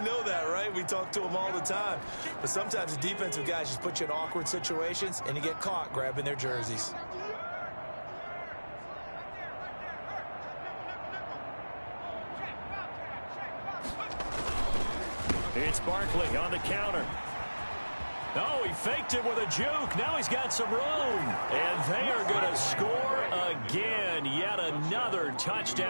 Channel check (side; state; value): both; inverted; correlation -1.00